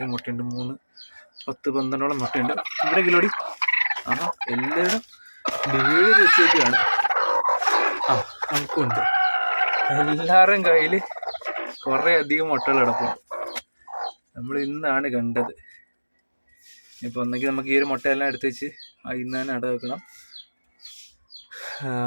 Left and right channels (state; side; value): inverted; both; correlation -1.00